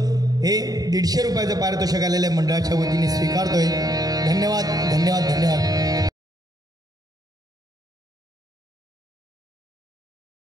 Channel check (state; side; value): late; left; 0.18 ms